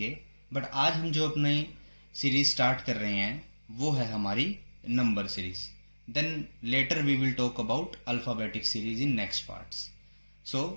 बट आज हम जो अपनी सीरीज स्टार्ट कर रहे हैं वो है हमारी number series. Then later we will talk about alphabetic series in next parts. So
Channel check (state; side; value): inverted; both; correlation -1.00